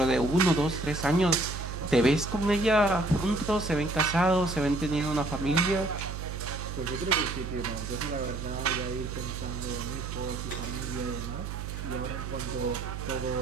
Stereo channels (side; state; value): right; noise; hum, 6 dB below the sound